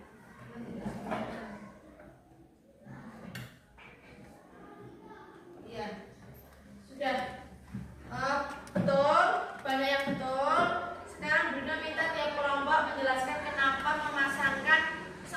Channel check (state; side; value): identical; both; correlation 1.00